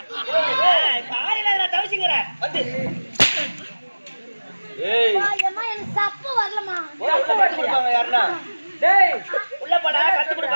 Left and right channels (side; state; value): both; inverted; correlation -1.00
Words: தாலில நான் தவிச்சுங்கறேன் வந்து ஏய் அம்மா எனக்கு சப்பு வரலமா உள்ள கட்டு கொடுப்பாங்க யாரனா டேய் உள்ள போடா கட்டு